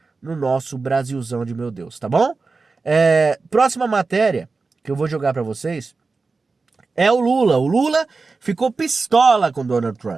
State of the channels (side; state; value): left; quieter; 4.1 dB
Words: no nosso Brasilzão de meu Deus, tá bom? Próxima matéria que eu vou jogar para vocês é o Lula. O Lula ficou pistola com Donald